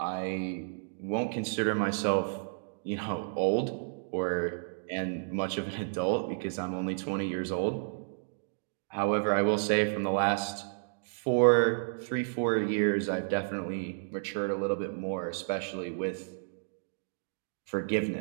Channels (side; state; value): left; silent; digital silence